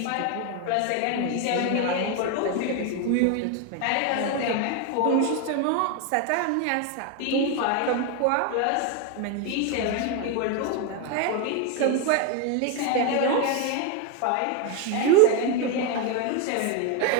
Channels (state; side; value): different; both; correlation 0.01